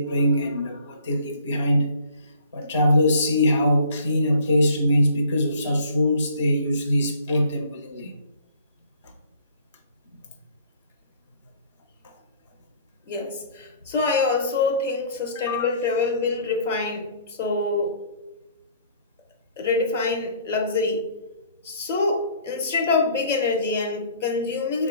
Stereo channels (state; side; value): inverted; both; correlation -0.55